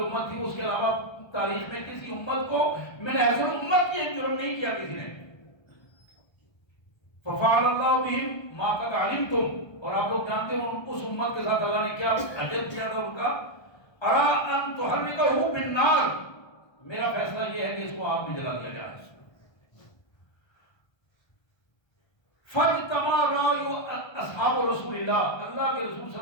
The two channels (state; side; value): late; right; 1.3 ms